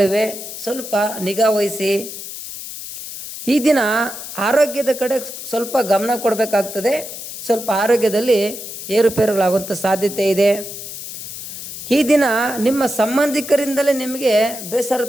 ಸ್ವಲ್ಪ ನಿಗಾ ವಹಿಸಿ. ಈ ದಿನ ಆರೋಗ್ಯದ ಕಡೆ ಸ್ವಲ್ಪ ಗಮನ ಕೊಡಬೇಕಾಗ್ತದೆ. ಸ್ವಲ್ಪ ಆರೋಗ್ಯದಲ್ಲಿ ಏರುಪೇರುಗಳಾಗುವಂಥ ಸಾಧ್ಯತೆ ಇದೆ. ಈ ದಿನ ನಿಮ್ಮ ಸಂಬಂಧಿಕರಿಂದಲೇ ನಿಮಗೆ ಬೇಸರ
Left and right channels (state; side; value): noise; left; hiss, 10 dB below the sound